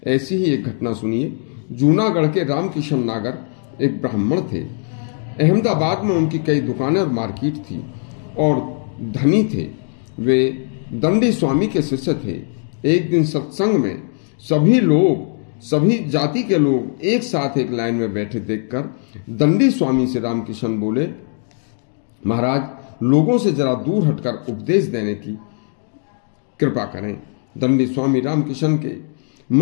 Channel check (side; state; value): right; silent; 58 dB below the other